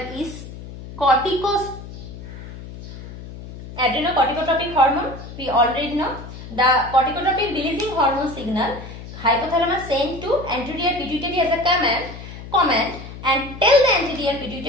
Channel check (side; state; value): left; noise; hum, 13 dB below the sound